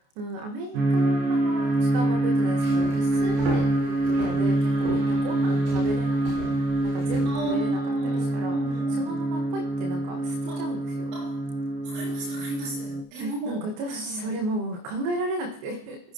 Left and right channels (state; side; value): late; left; 28 ms